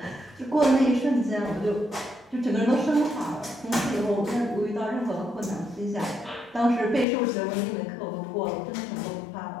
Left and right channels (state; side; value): drops out; right; at 7.1 s